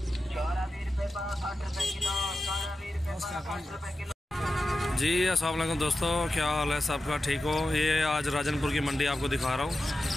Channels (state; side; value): normal; both; correlation 0.92